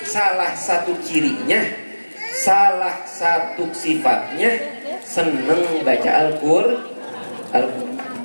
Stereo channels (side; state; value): both; inverted; correlation -1.00